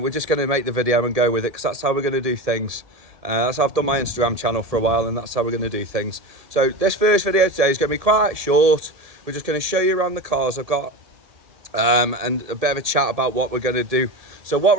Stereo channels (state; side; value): late; left; 1.8 ms